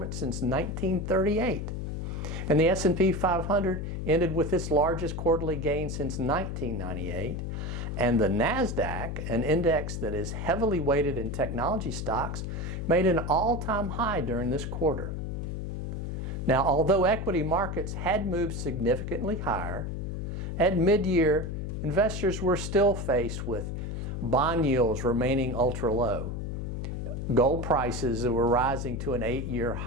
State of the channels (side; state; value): left; noise; hum, 4 dB below the sound